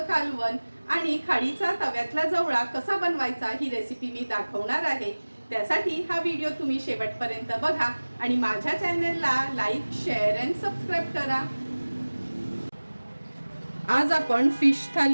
कालवण आणि खाडीचा तव्यातला जवळा कसा बनवायचा ही रेसिपी मी दाखवणार आहे। त्यासाठी हा व्हिडिओ तुम्ही शेवटपर्यंत बघा आणि माझ्या चॅनलला लाईक, शेअर अँड सबस्क्राइब करा। आज आपण फिश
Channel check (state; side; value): inverted; both; correlation -1.00